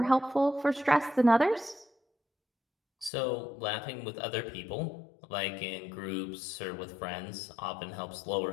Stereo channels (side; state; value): right; drops out; at 3.1 s